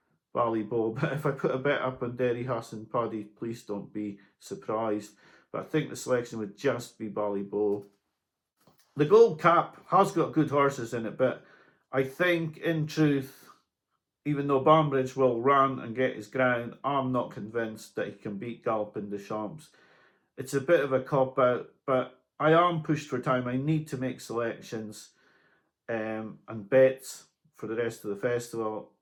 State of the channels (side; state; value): both; identical; correlation 1.00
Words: Ballyboe, but if I put a bet up on Derry Hassan Paddy, please don't be surprised. But I think the selection would just be Ballyboe. The Gold Cup has got good horses in it, but I think, in truth, even though Banbridge will run and get his ground, I'm not convinced that he can beat Galopin Des Champs. It's a bit of a cop-out, but I am pushed for time. I need to make selections and bets for the rest of the festival.